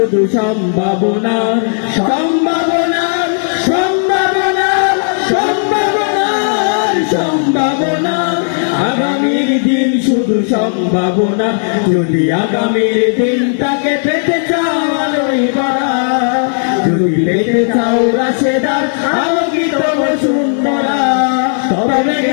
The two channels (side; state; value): right; silent; digital silence